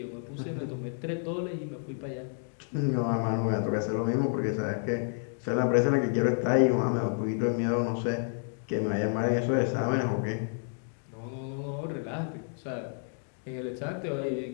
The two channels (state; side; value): silent; right; 58 dB below the other